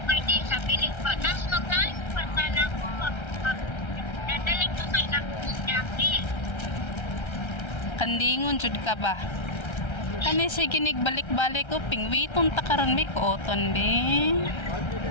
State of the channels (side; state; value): right; late; 1.3 ms